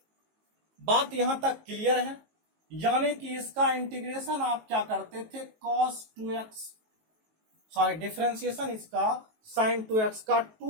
बात यहां तक क्लियर है? यानी कि इसका इंटीग्रेशन आप क्या करते थे, cos 2x, सॉरी डिफरेंशिएशन इसका sin 2x का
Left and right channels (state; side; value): late; left; 19 ms